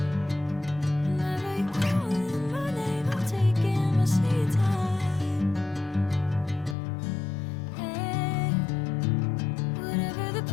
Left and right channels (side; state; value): right; drops out; at 6.8 s